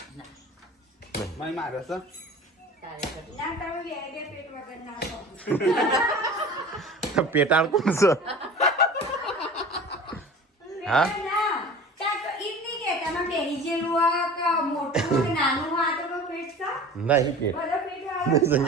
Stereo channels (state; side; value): normal; both; correlation 0.38